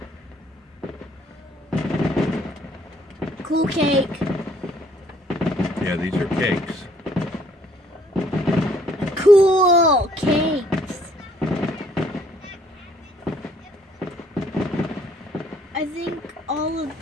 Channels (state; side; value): normal; both; correlation 0.63